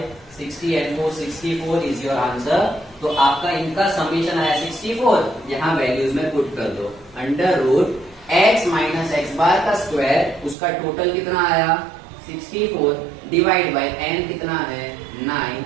60 and 4 64 is your answer. तो आपका इनका समीशन आया 64, यहाँ वैल्यूज में पुट कर दो। Under root x minus x bar का स्क्वायर, उसका टोटल कितना आया? 64 डिवाइड बाय n कितना है? 9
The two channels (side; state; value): left; drops out; at 10.6 s